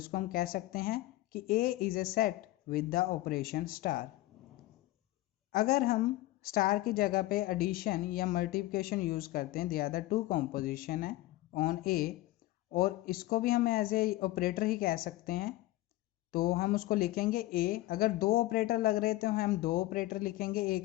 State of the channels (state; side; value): quieter; right; 17.4 dB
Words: हम कह सकते हैं कि A is a set with the operation star. अगर हम स्टार की जगह पे एडिशन या मल्टीप्लिकेशन यूज करते हैं, they are the two composition है ऑन ए, और इसको भी हम एज ए ऑपरेटर ही कह सकते हैं, तो हम उसको लिखेंगे ए। अगर दो ऑपरेटर लग रहे तो हम दो ऑपरेटर लिखेंगे ए